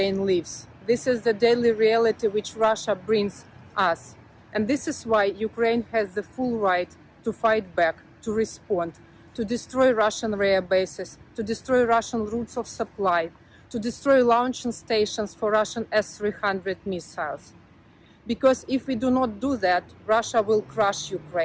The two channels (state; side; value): identical; both; correlation 1.00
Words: lives. This is the daily reality which Russia brings us. And this is why Ukraine has the full right to fight back, to respond, to destroy Russian rare bases, to destroy Russian routes of supply, to destroy launching stations for Russian S-300 missiles. Because if we do not do that, Russia will crush